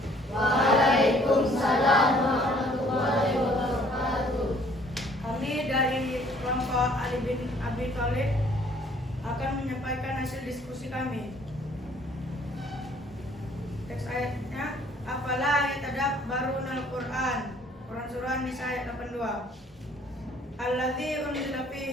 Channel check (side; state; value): both; normal; correlation 0.59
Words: Waalaikumsalam warahmatullahi wabarakatuh. Kami dari kelompok Ali bin Abi Thalib akan menyampaikan hasil diskusi kami. Teks ayatnya, afala yatadabbarunal Qur'an. Quran surah Nisa ayat 82. Alladzi unzila